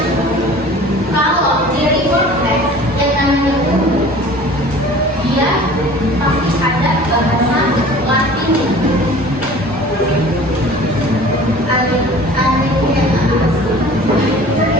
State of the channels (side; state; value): both; normal; correlation 0.44